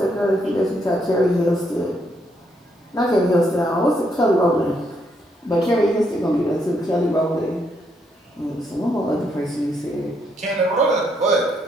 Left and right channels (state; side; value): normal; both; correlation 0.75